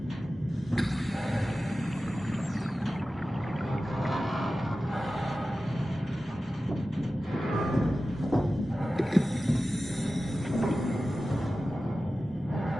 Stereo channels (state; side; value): normal; both; correlation 0.94